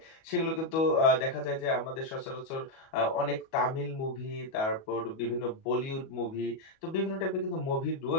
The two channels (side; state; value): right; late; 37 ms